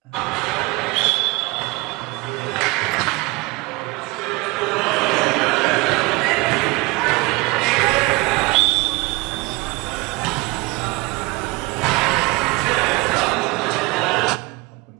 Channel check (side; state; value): left; quieter; 24.5 dB